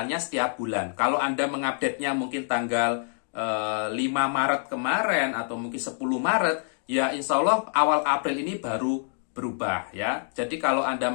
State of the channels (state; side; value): silent; right; digital silence